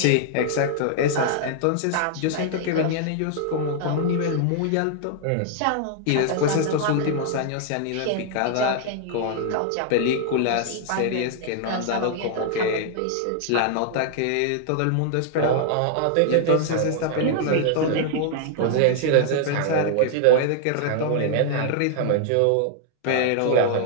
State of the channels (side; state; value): both; different; correlation -0.01